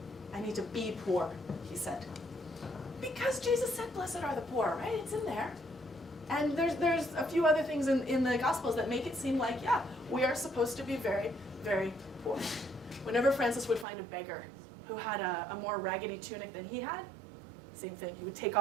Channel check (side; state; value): left; drops out; at 13.9 s